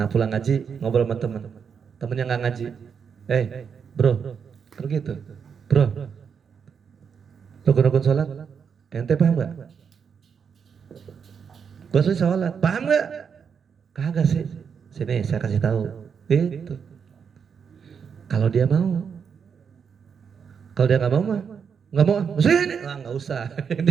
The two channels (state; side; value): quieter; left; 6.7 dB